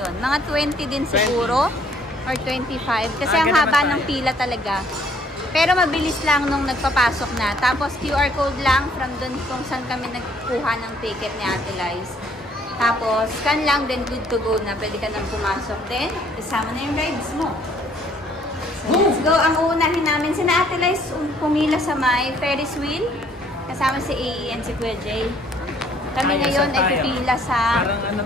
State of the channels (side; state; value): both; normal; correlation 0.62